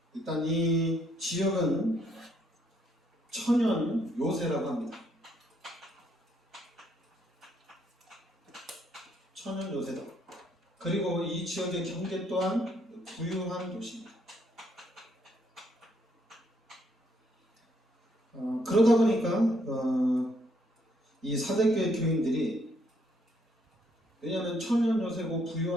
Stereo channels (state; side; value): normal; both; correlation 0.71